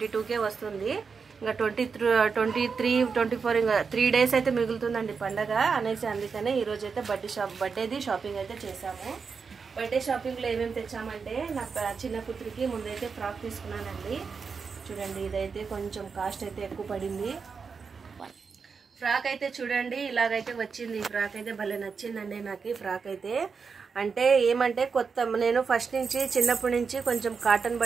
వస్తుంది. ఇంకా 23, 24 ఇంకా 3 days అయితే మిగులుతుందండి పండగ అనేసి. అందుకనే ఈరోజు అయితే బర్త్డేది షాపింగ్ అయితే చేసాము. బర్త్డే షాపింగ్లో ఏమేమి తెచ్చామంటే నా చిన్న కూతురికి ముందైతే ఫ్రాక్ తీసుకున్నానండి. చూడండి, ఇదైతే కొంచెం కాస్ట్ అయితే ఎక్కువ పడింది. ఫ్రాక్ అయితే చూడండి ఇలాగైతే వచ్చింది. ఈ ఫ్రాక్ అయితే భలే నచ్చిందండి నాకు. ఈ ఫ్రాక్ అయితే అంటే ఏమంటే నేను ఫస్ట్ నుంచి చిన్నప్పటి నుంచి కొంచెం కాటన్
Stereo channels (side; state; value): left; quieter; 5.4 dB